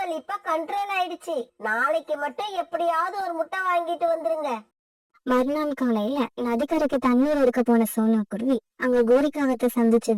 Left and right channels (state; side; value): identical; both; correlation 1.00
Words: இப்ப கண்ட்ரோல் ஆயிடுச்சு. நாளைக்கு மட்டும் எப்படியாவது ஒரு முட்டை வாங்கிட்டு வந்துருங்க. மறுநாள் காலையில நதிக்கரைக்கு தண்ணீர் எடுக்க போன சோனா குருவி அங்க கோரிக்காகத்தை